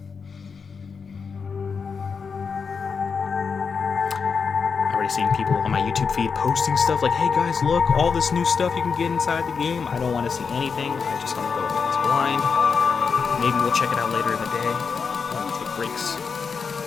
I've already seen people on my YouTube feed posting stuff like, hey guys, look, all this new stuff you can get inside the game. I don't want to see anything. I just want to go into this blind. Maybe we'll check it out later in the day when we take breaks.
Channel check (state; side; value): quieter; right; 5.6 dB